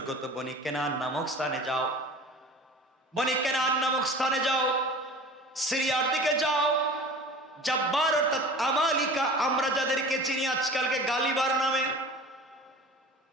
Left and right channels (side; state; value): both; normal; correlation 0.40